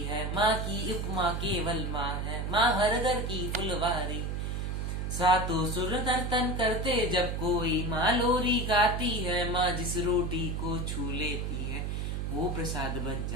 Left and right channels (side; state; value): right; noise; hum, 2 dB below the sound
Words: है, माँ की उपमा केवल माँ है, माँ हर घर की फुलवारी। सातों सुर नर्तन करते जब कोई माँ लोरी गाती है, माँ जिस रोटी को छू लेती है वो प्रसाद बन